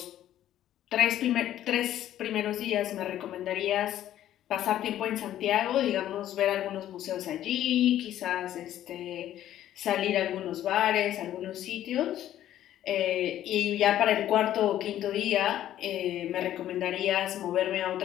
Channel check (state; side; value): quieter; right; 12.2 dB